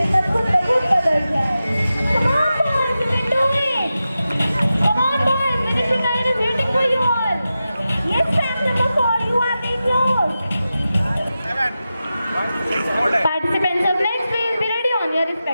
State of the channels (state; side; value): inverted; both; correlation -0.92